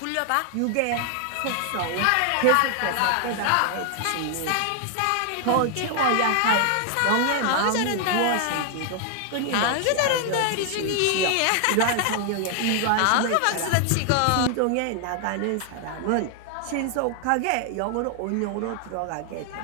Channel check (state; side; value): different; both; correlation 0.00